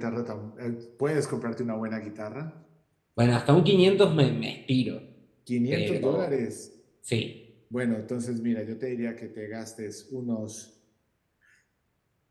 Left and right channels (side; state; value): both; identical; correlation 1.00